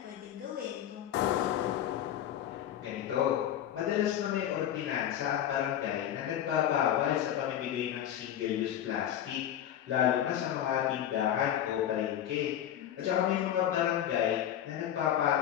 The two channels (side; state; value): right; quieter; 10.8 dB